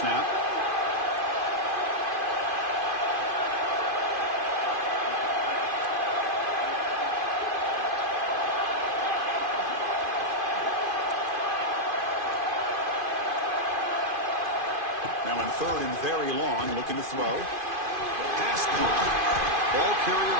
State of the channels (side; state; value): left; late; 2.5 ms